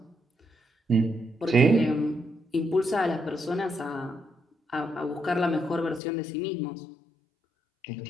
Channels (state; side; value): drops out; right; at 6.0 s